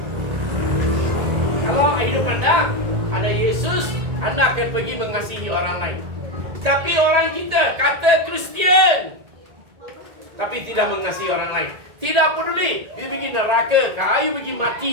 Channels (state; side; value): late; left; 1.8 ms